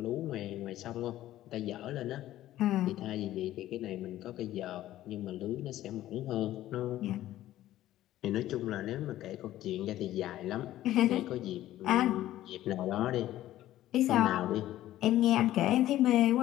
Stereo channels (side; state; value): right; quieter; 14.0 dB